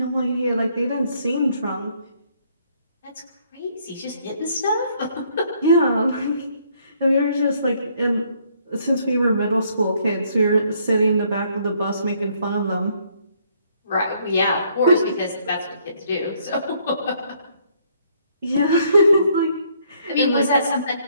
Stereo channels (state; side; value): inverted; both; correlation -0.67